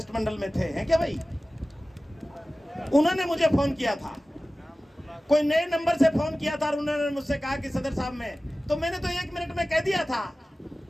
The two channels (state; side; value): normal; both; correlation 0.96